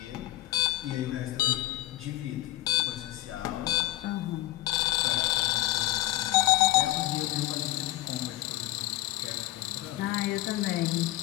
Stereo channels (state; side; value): quieter; right; 16.1 dB